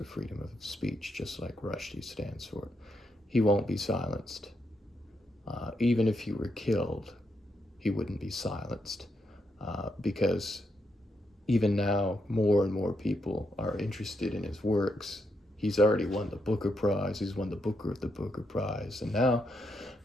freedom of speech, just like Rushdie stands for. He won't be silenced. Even if he were killed, he wouldn't be silenced, because even now more and more people are interested in his works. He's already won the Booker Prize. He's won the Booker of the Booker Prize. And now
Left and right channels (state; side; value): normal; both; correlation 0.80